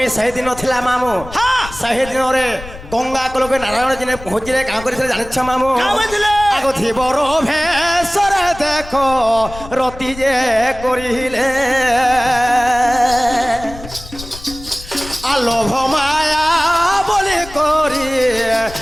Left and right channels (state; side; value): noise; left; rumble, 15 dB below the sound